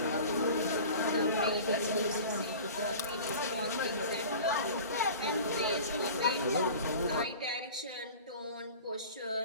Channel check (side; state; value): both; inverted; correlation -0.39